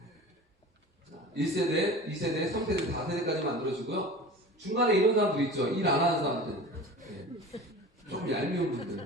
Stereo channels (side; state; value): both; normal; correlation 0.36